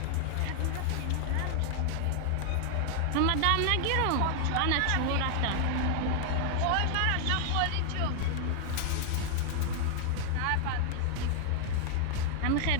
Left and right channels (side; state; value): both; different; correlation 0.00